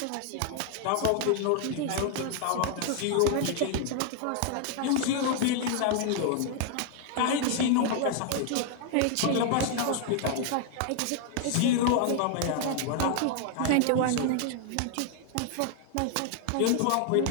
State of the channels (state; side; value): different; both; correlation 0.00